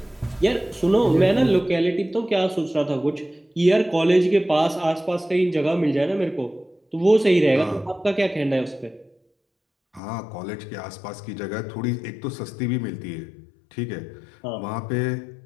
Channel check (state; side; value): drops out; right; at 10.0 s